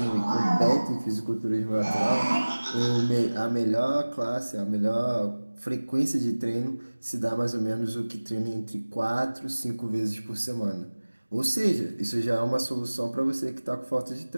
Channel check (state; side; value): inverted; both; correlation -1.00